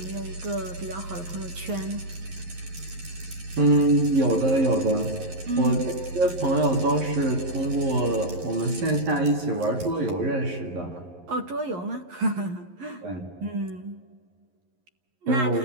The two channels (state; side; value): late; left; 11 ms